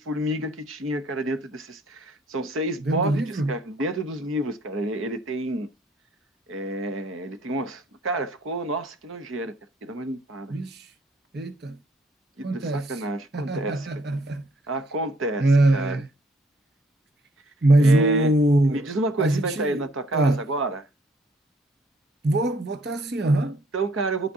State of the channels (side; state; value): both; normal; correlation 0.63